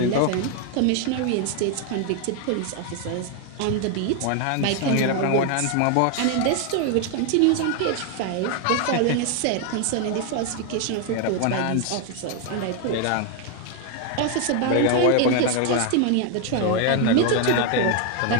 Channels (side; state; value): both; different; correlation 0.01